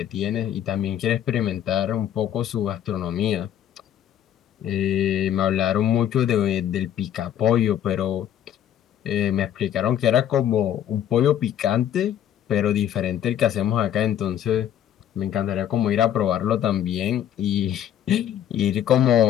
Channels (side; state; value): right; quieter; 10.3 dB